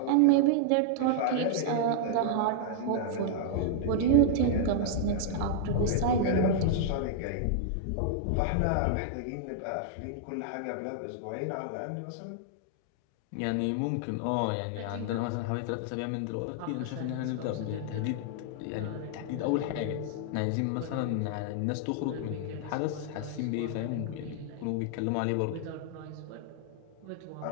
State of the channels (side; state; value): both; different; correlation -0.01